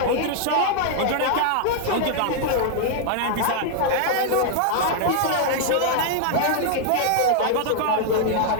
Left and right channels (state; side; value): different; both; correlation 0.00